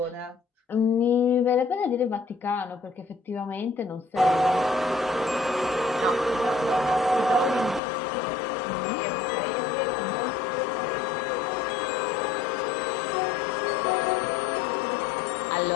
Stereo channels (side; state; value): right; drops out; at 7.8 s